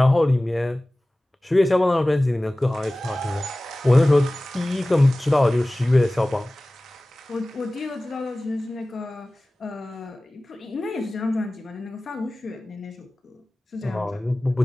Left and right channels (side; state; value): both; normal; correlation 0.98